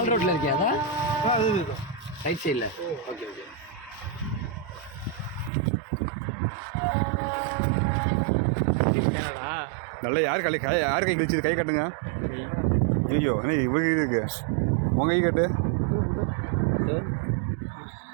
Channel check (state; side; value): drops out; left; at 5.5 s